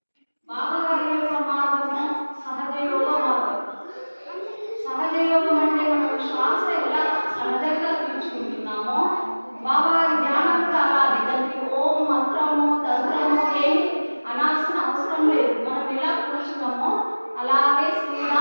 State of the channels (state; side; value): inverted; both; correlation -1.00